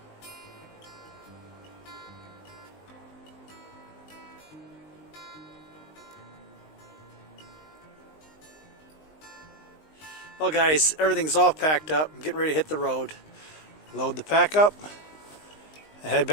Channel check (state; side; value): late; right; 19 ms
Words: Well guys, everything's all packed up. I'm getting ready to hit the road. Load the pack up and head